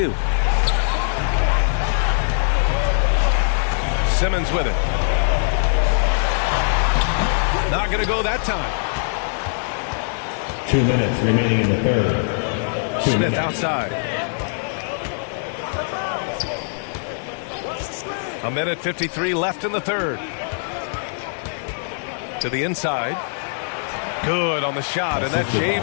Simmons with it. Not going to go that time. 2 minutes remaining in the third. Smith outside. A minute 53 left in the third. To the inside. Good on the shot, and that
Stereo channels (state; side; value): silent; right; digital silence